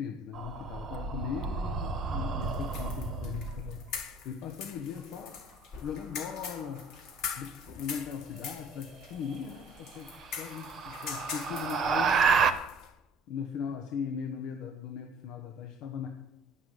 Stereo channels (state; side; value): normal; both; correlation 0.52